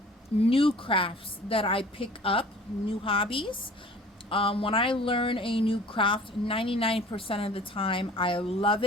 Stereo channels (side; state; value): both; normal; correlation 0.47